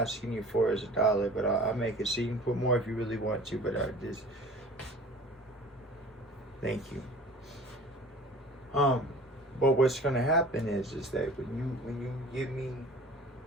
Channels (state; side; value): normal; both; correlation 0.43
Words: you for is $1, but I'll make it so you can put more if you really want to. But this, thank you. But what's going to happen is that when you give me